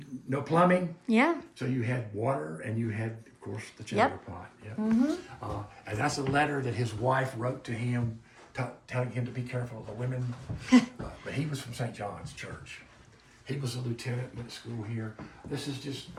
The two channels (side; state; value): both; identical; correlation 1.00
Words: no plumbing, Yeah. so you had water and you had, of course, the chamber pot. Yep. And that's a letter that his wife wrote to him, telling him to be careful of the women. But he was from St. John's Church. He was a lieutenant, went to school here. This is